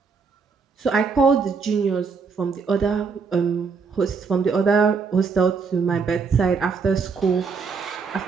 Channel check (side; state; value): left; quieter; 5.3 dB